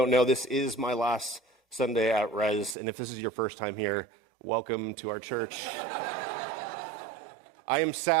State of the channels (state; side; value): drops out; left; at 2.8 s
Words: know, this is my last Sunday at Res, and if this is your first time here, welcome to our church. I am